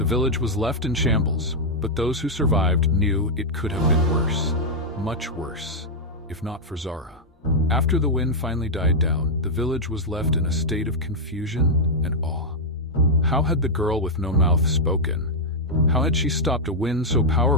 village was left in shambles, but those who survived knew it could have been worse. Much worse, if not for Zara. After the wind finally died down, the village was left in a state of confusion and awe. How had the girl with no mouth spoken? How had she stopped a wind so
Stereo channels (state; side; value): normal; both; correlation -0.03